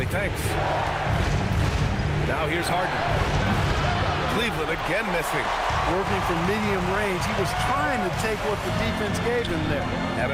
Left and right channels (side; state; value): both; identical; correlation 1.00